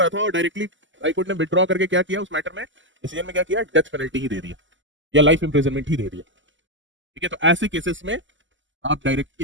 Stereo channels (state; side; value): late; left; 0.55 ms